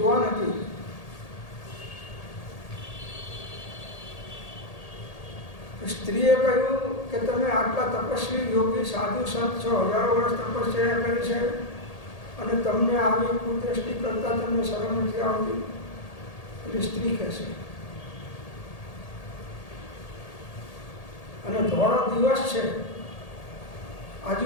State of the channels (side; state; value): right; late; 1.8 ms